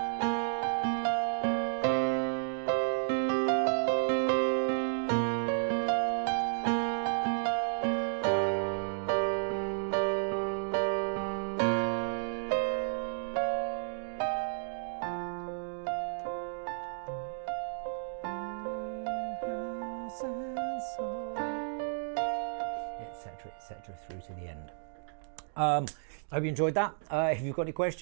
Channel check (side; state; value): left; silent; digital silence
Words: Etc. through to the end. I hope you enjoyed that. If you've got any